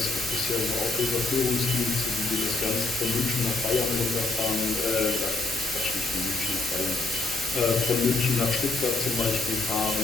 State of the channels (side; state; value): right; quieter; 3.2 dB